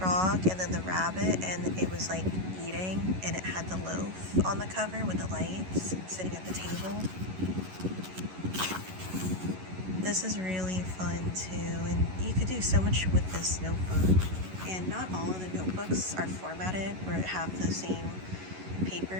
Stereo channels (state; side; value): late; left; 11 ms